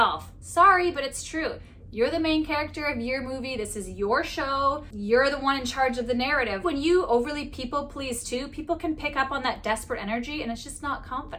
Sorry, but it's true. You're the main character of your movie. This is your show. You're the one in charge of the narrative. When you overly people please too, people can pick up on that desperate energy and it's just not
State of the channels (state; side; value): identical; both; correlation 1.00